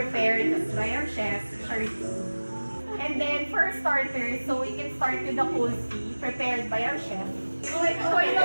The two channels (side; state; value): both; inverted; correlation -1.00